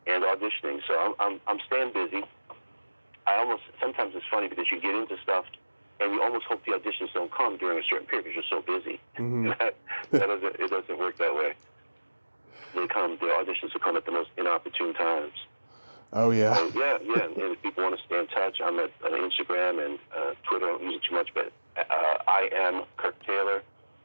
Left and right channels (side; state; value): both; inverted; correlation -1.00